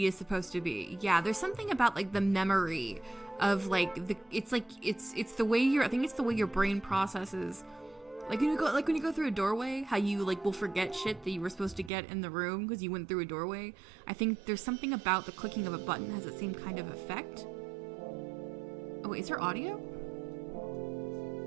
is supposed to be. Yeah, there's something about, like, the memory of, like, it's the way I think it's the way your brain processes. Like, when you go through a doorway, how you, like, will forget shit that you were supposed to get in the room because you went through a doorway. I think there's something about the clicking of a button has the same kind of effect. Oh, wait, is there audio?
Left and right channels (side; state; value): left; drops out; at 11.9 s